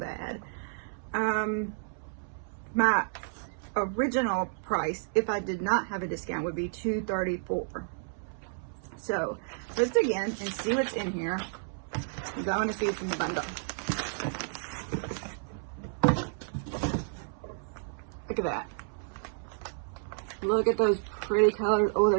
My original price, if I did not have a discount, would be $234. So let's dig in and see what's in here, because I want to see what's in the bundle. Look at that. Look at those pretty colors. Oh,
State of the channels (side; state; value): left; silent; 57 dB below the other